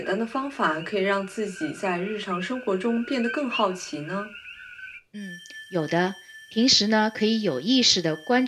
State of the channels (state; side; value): identical; both; correlation 1.00